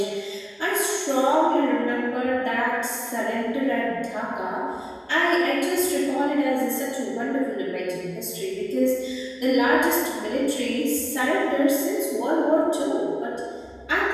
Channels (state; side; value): identical; both; correlation 1.00